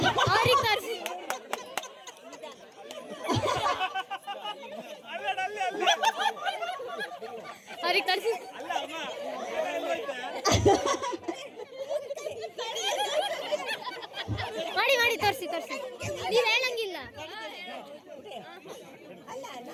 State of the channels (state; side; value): identical; both; correlation 1.00